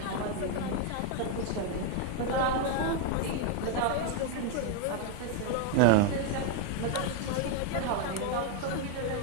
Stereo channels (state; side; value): different; both; correlation 0.01